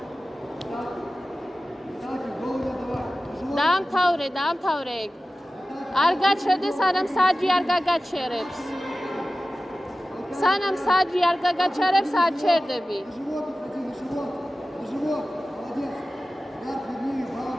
დაამთავრე ეგ. არ გაჩერდე, სანამ საჯი არ გაგაჩერებს. სანამ საჯი არ გაგაჩერებს, არ ჩერდები.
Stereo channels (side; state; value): both; normal; correlation 0.95